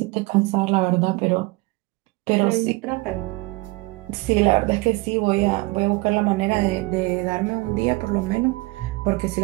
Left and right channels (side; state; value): left; quieter; 23.4 dB